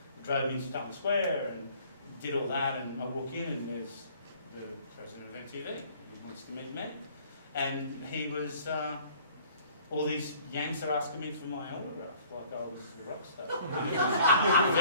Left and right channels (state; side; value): inverted; both; correlation -0.55